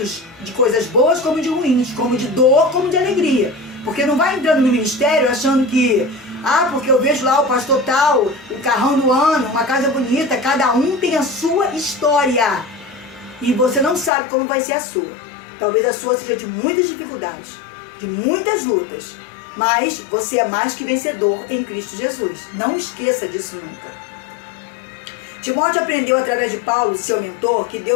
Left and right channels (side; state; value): right; drops out; at 14.1 s